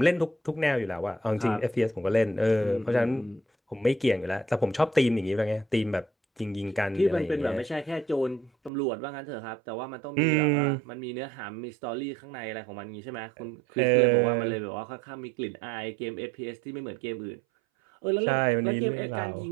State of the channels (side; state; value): left; drops out; at 8.7 s